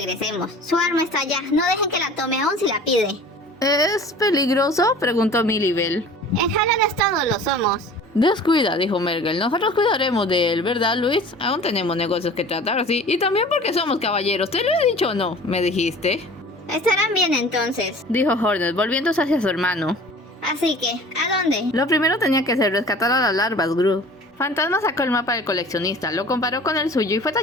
Su arma está allá. No dejen que la tome aún si la pide. ¿Es peligroso?, preguntó Milibel. En Hallownest todos lo somos. Descuida, dijo Mergal. Nosotros cuidaremos de él, ¿verdad, Luis? Aún tenemos negocios que tratar, sí. Y también porque somos caballeros. ¿Te lo he dicho o no? ¿Me dijiste? Estarán bien entonces, dijo Hornet, volviéndose hacia su hermano. Así que, ¿a dónde? Lo primero tenía que ser rescatar a las larvas, Gru. Fantasma sacó el mapa del coleccionista, lo comparó con el suyo y fue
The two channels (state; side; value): normal; both; correlation 0.44